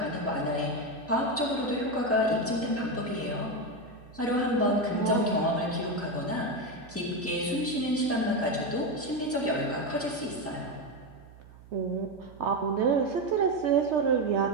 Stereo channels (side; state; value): right; noise; hum, 21 dB below the sound